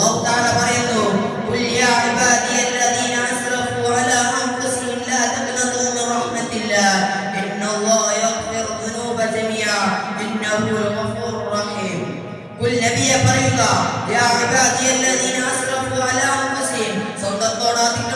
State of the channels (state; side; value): identical; both; correlation 1.00